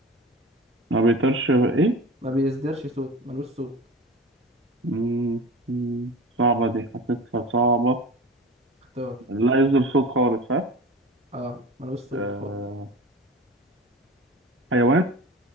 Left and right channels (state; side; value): normal; both; correlation 0.33